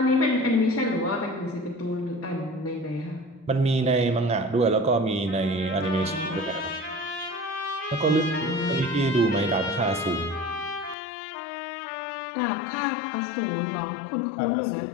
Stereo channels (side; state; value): right; drops out; at 11.0 s